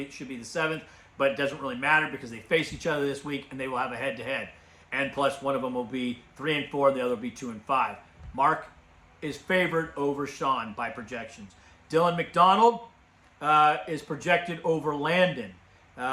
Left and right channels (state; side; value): identical; both; correlation 1.00